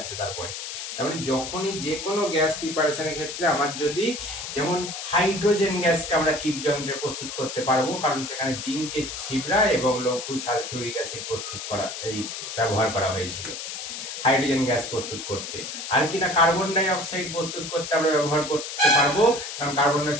তারপরে তার মানে যখনই যে কোনো গ্যাস প্রিপারেশনের ক্ষেত্রে আমার যদি, যেমন হাইড্রোজেন গ্যাসকে আমরা কিপ যন্ত্রে প্রস্তুত করতে পারবো, কারণ সেখানে জিঙ্কের ছিবড়া এবং লঘু সালফিউরিক অ্যাসিড প্রস্তুত করা, এই ব্যবহার করা হয়েছিল হাইড্রোজেন গ্যাস প্রস্তুত করতে। আর কি না, কার্বন ডাই অক্সাইড প্রস্তুত করতে আমরা ব্যবহার করতে পারবো, কারণ carbon die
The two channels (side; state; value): left; noise; hiss, 7 dB below the sound